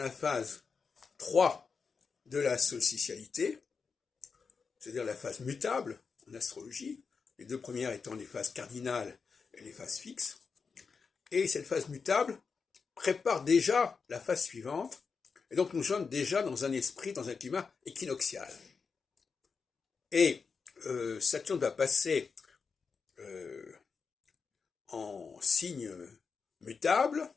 phase 3 de la solsticialité, c'est-à-dire la phase mutable en astrologie, les deux premières étant les phases cardinales et les phases fixes. Et cette phase mutable prépare déjà la phase suivante, et donc nous sommes déjà dans un esprit, dans un climat équinoxial. Et Saturne va passer en signe mutable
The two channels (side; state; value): right; quieter; 5.3 dB